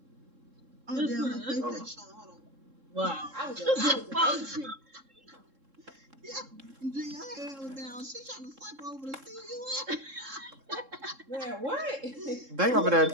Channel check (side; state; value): left; late; 3.7 ms